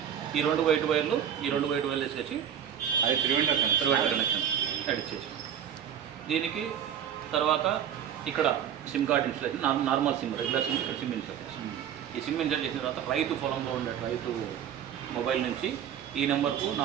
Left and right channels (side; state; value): left; quieter; 9.3 dB